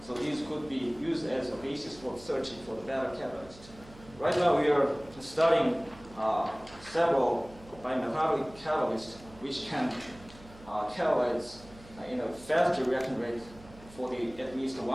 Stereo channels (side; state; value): right; noise; hum, 20 dB below the sound